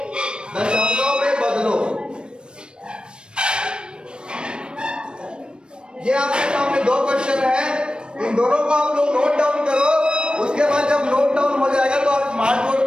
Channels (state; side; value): late; left; 0.053 ms